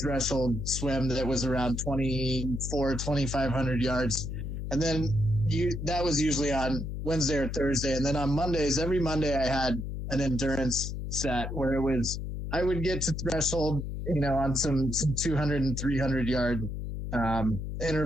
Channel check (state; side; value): noise; left; hum, 5 dB below the sound